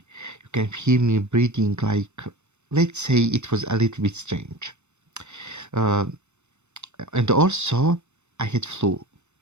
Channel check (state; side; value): late; left; 0.82 ms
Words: You can hear me breathing like, let's say it was a little bit strange. And also, I had flu